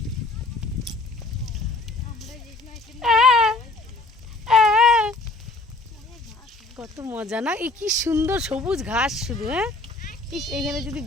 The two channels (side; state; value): right; quieter; 3.1 dB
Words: কত মজা না, এই কি সুন্দর সবুজ ঘাস শুধু। হ্যাঁ, এইখানে যদি